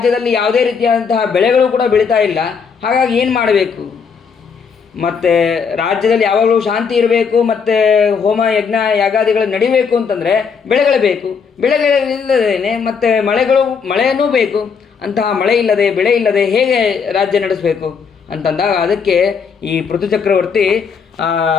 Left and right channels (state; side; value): quieter; right; 6.0 dB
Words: ಯಾವುದೇ ರೀತಿಯಾದಂತಹ ಬೆಳೆಗಳು ಕೂಡ ಬೆಳೀತಾ ಇಲ್ಲ. ಹಾಗಾಗಿ ಏನು ಮಾಡಬೇಕು, ಮತ್ತು ರಾಜ್ಯದಲ್ಲಿ ಯಾವಾಗಲೂ ಶಾಂತಿ ಇರಬೇಕು, ಮತ್ತು ಹೋಮ ಯಜ್ಞ ಯಾಗಾದಿಗಳು ನಡಿಬೇಕು ಅಂತಂದರೆ ಬೆಳೆಗಳು ಬೇಕು. ಬೆಳೆಗಳಿಲ್ಲದೇನೆ ಮತ್ತು ಮಳೆಯನ್ನೂ ಬೇಕು. ಅಂತಹ ಮಳೆ ಇಲ್ಲದೆ, ಬೆಳೆ ಇಲ್ಲದೆ ಹೇಗೆ ರಾಜ್ಯ ನಡೆಸಬೇಕು ಅಂತಂದಾಗ ಅದಕ್ಕೆ ಈ ಪೃಥು ಚಕ್ರವರ್ತಿ